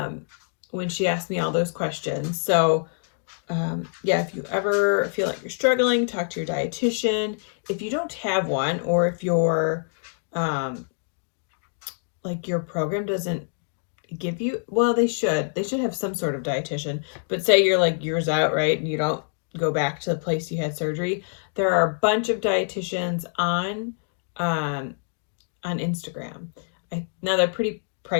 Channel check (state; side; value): silent; right; digital silence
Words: when she asked me all those questions. So yeah, if you ever feel like you're struggling, talk to your dietitian. If you don't have one, or if your your program doesn't give you, well, they should have some sort of dietitian, but say you're years out, right, and you don't go back to the place you had surgery, there are a bunch of dietitians on Instagram. Now they're pretty